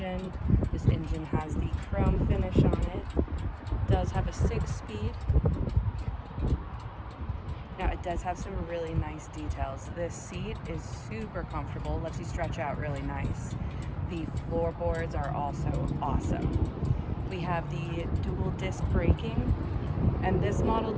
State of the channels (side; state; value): both; identical; correlation 1.00